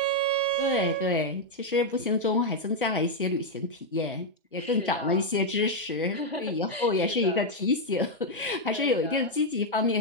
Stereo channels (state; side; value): normal; both; correlation 0.00